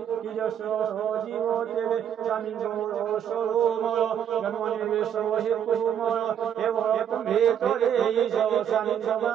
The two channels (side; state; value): left; quieter; 9.2 dB